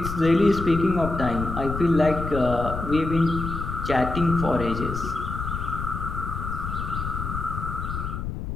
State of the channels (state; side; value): noise; left; rumble, 5 dB below the sound